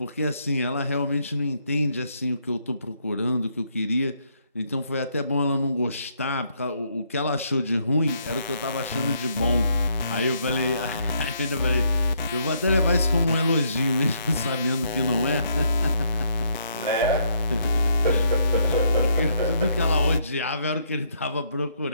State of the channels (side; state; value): both; inverted; correlation -0.72